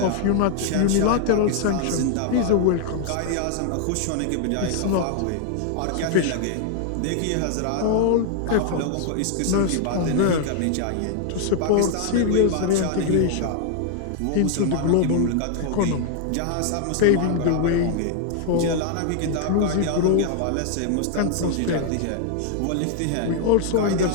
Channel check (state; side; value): different; both; correlation 0.00